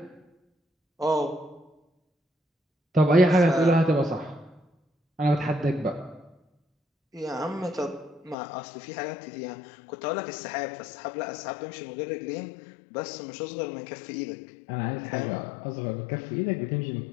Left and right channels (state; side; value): drops out; right; at 8.3 s